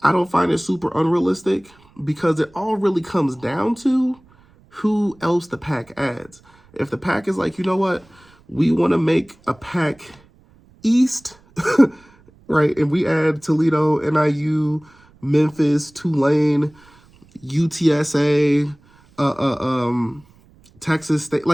I don't find it super unrealistic because it all really comes down to who else the PAC adds. If the PAC is like, you know what, we want to make a PAC East, right? And we add Toledo, NIU, Memphis, Tulane, UTSA, Texas State.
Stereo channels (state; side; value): noise; right; rumble, 29 dB below the sound